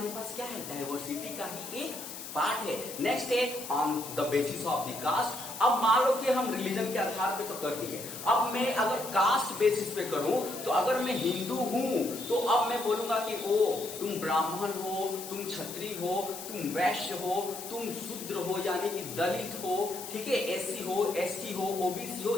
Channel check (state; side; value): noise; left; hiss, 10 dB below the sound